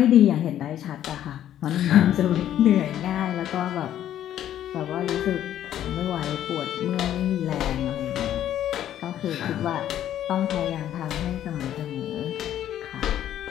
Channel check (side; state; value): right; quieter; 11.3 dB